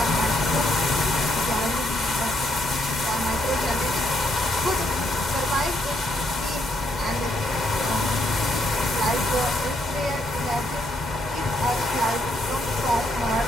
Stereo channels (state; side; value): normal; both; correlation 0.74